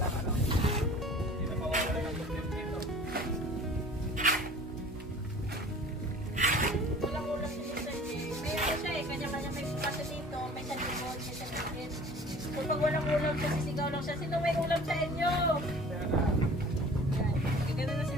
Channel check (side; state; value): both; normal; correlation 0.46